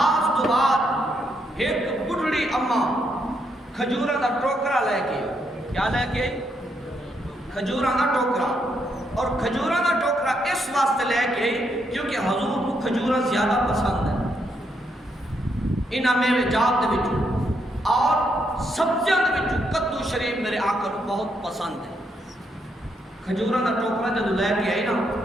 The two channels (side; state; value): both; normal; correlation 0.77